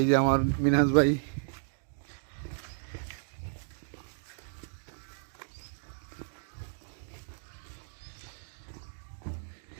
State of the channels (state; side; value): silent; left; digital silence